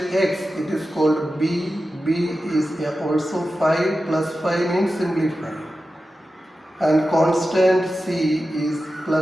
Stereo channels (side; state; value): both; normal; correlation 0.92